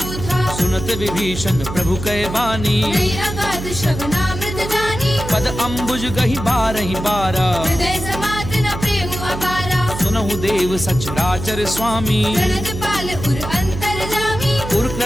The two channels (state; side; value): noise; right; hum, 8 dB below the sound